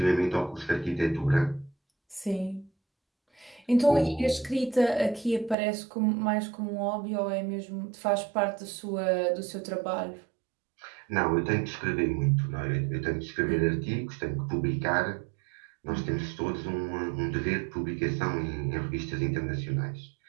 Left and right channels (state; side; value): drops out; left; at 5.6 s